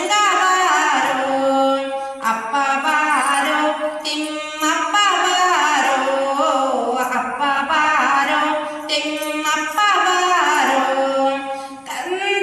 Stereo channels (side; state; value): both; identical; correlation 1.00